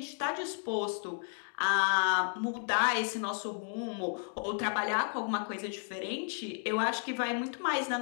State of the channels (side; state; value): right; silent; 56 dB below the other